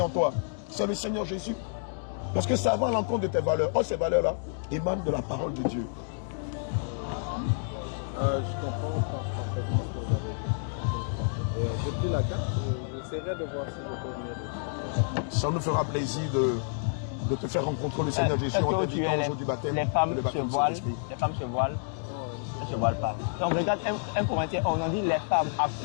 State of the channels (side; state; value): right; silent; digital silence